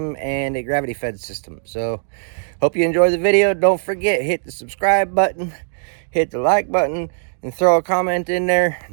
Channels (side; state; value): left; silent; digital silence